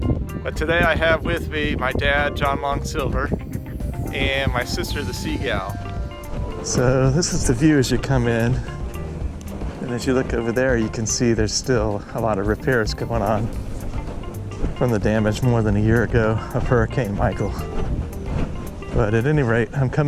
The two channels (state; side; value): identical; both; correlation 1.00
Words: But today I have with me my dad, John Long Silver, and my sister, the Seagal. So this is the view as you come in, and as you look over there, you can see there's still a lot of repairs going on from the damage more than a year ago of Hurricane Michael. But at any rate, I'm